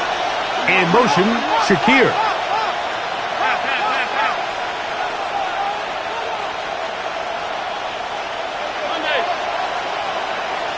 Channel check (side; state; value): both; identical; correlation 1.00